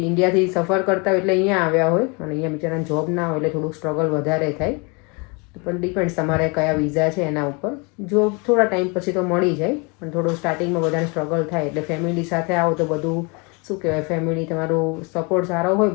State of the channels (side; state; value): right; quieter; 30.9 dB